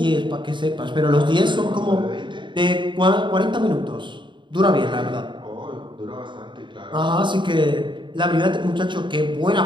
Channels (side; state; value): left; late; 0.23 ms